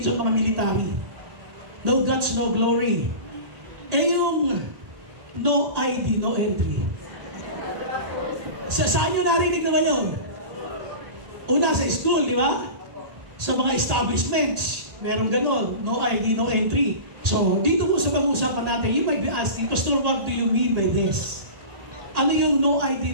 mga military. No guts, no glory. Yung no ID, no entry. Saan nyo narinig naman yun? Una sa school, di ba? Sa mga establishments, meron ganon, no ID, no entry. So, dito po sa pag-uusapan natin, you might be asking, Pastor, what do you mean by this? Ano yung no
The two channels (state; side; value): late; left; 1.8 ms